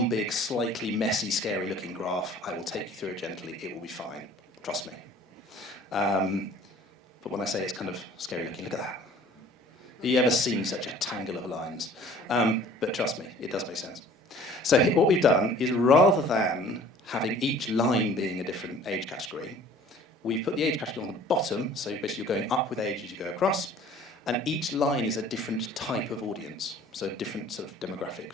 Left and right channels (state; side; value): normal; both; correlation 0.50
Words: big, slightly messy, scary-looking graph. I will take you through it gently. It will be fine. Trust me. But when I say it's kind of scary-looking, look at that. Have you ever seen such a tangle of lines? But trust me, it does make sense. So what we've done is, rather than having each line being a different age category, we've put the age category on the bottom, so basically you're going up with age as you go across, and each line is a different type of audience, so a different sort of demographic